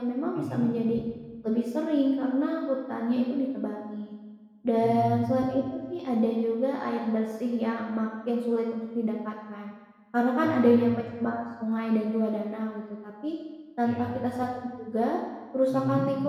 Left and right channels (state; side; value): identical; both; correlation 1.00